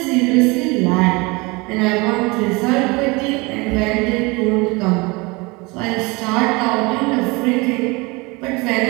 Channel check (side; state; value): left; quieter; 25.8 dB